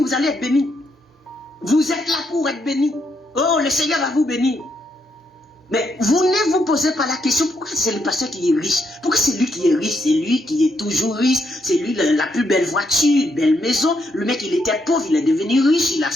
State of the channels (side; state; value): both; normal; correlation 0.77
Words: vous allez être béni. Vous êtes là pour être béni. Oh, le Seigneur va vous bénir. Mais vous ne vous posez pas la question, pourquoi c'est le pasteur qui est riche? Pourquoi c'est lui qui est riche? C'est lui qui est toujours riche. C'est lui la plus belle voiture, une belle maison. Le mec, il était pauvre, il est devenu riche. Il a